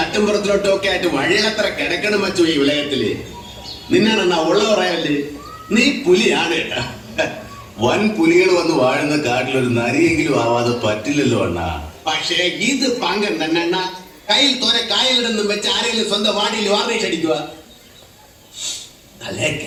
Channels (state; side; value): identical; both; correlation 1.00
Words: ഒക്കെ ആയിട്ട് വഴിയത്ര കിടക്കണം വച്ചു ഈ വിളയത്തില്. നിന്നാണെന്നാ ഉള്ള പറയല്ലേ, നീ പുലിയാണ് കേട്ടാ. വൻ പുലികൾ വന്ന് വാഴുന്ന കാട്ടിലൊരു നരിയെങ്കിലും ആവാതെ പറ്റില്ലല്ലോ അണ്ണാ. പക്ഷേ ഇത് പാങ്കൻ തന്നെ അണ്ണാ. കയ്യിൽ തോരെ കായലിടൊന്നും വെച്ച് ആരെങ്കിലും സ്വന്തം വാടിയിൽ വാർണിഷ് അടിക്കുക. അല്ലേ